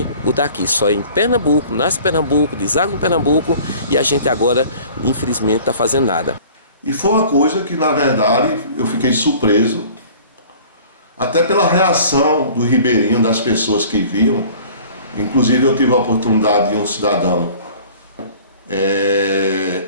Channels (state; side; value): inverted; both; correlation -0.47